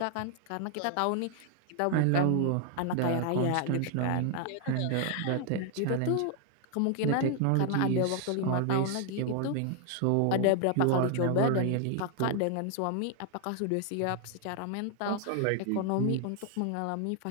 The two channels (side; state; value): both; different; correlation 0.00